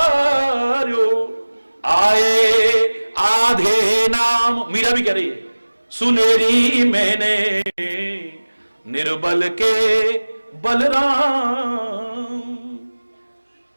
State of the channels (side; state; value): both; inverted; correlation -1.00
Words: आए आधे नाम। मीरा भी कह रही है, सुनेरी मैंने निर्बल के बलराम।